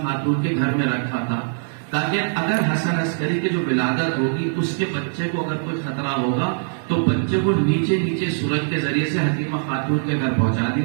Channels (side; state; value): left; silent; digital silence